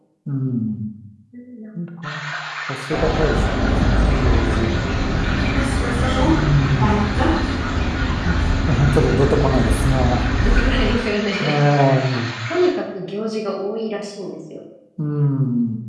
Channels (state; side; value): identical; both; correlation 1.00